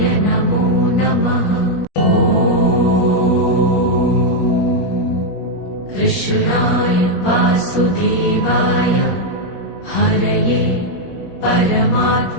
नमो नमः। कृष्णाय वासुदेवाय हरये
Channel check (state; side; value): late; right; 21 ms